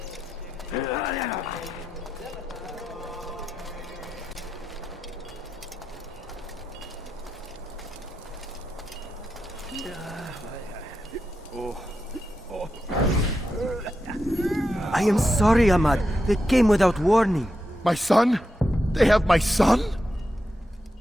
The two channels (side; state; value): both; normal; correlation 0.88